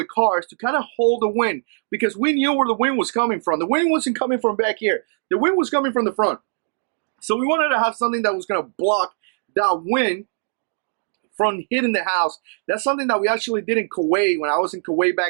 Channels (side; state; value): left; silent; digital silence